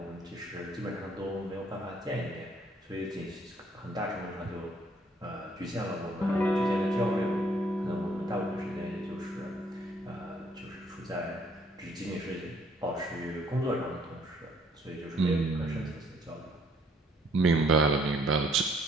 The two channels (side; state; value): both; normal; correlation 0.64